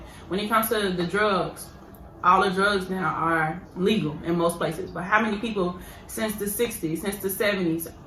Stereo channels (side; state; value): both; identical; correlation 1.00